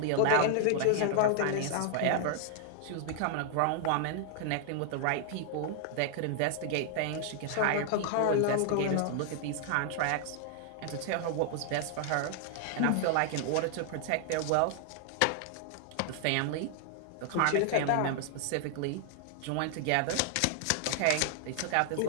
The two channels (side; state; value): both; different; correlation 0.00